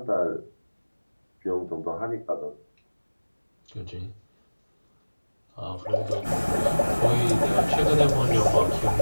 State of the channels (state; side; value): inverted; both; correlation -1.00